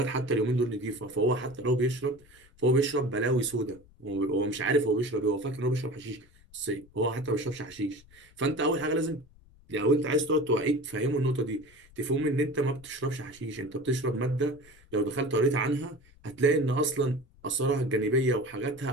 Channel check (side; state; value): left; noise; rumble, 26 dB below the sound